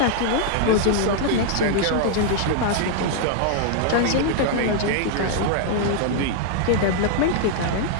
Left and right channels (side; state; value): both; different; correlation -0.01